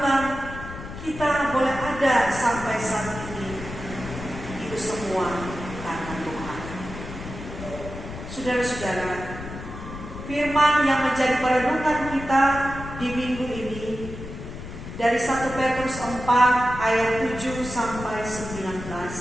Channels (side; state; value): left; noise; rumble, 10 dB below the sound